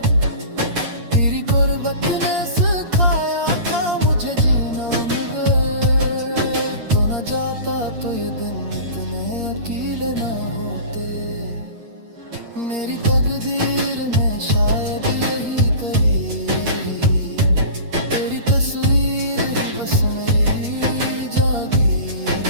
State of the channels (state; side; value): late; left; 8.6 ms